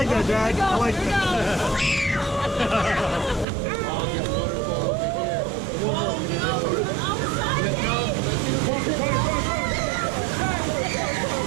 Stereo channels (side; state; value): left; drops out; at 3.5 s